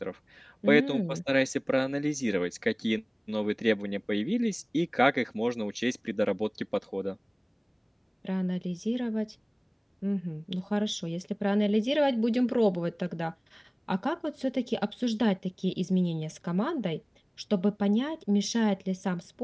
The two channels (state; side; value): identical; both; correlation 1.00